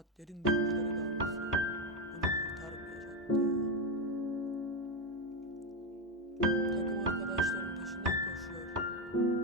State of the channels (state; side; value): normal; both; correlation 0.09